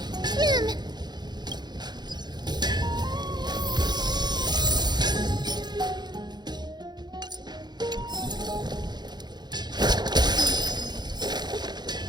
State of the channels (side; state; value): left; late; 0.21 ms